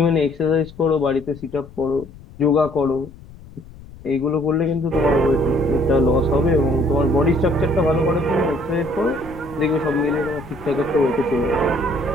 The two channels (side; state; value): left; noise; rumble, 19 dB below the sound